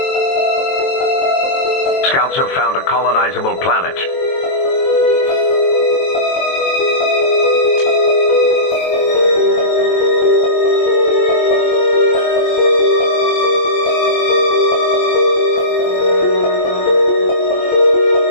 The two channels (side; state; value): right; late; 23 ms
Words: Scouts have found a colonizable planet.